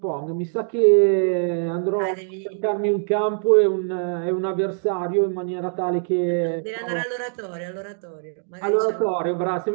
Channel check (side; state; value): left; silent; 63 dB below the other